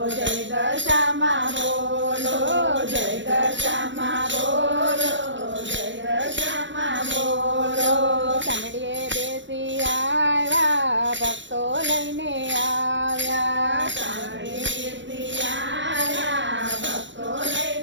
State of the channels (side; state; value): left; late; 0.54 ms